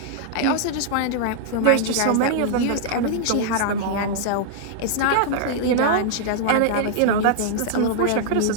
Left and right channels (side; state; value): both; different; correlation -0.01